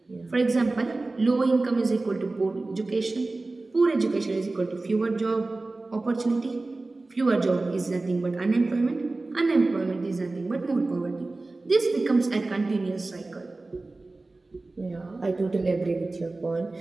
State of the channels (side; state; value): left; quieter; 3.2 dB